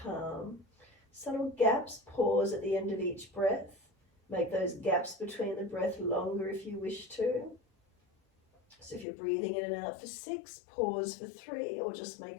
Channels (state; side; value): drops out; right; at 9.1 s